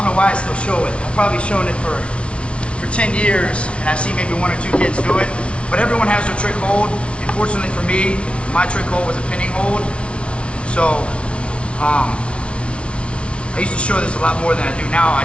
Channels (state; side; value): late; right; 0.060 ms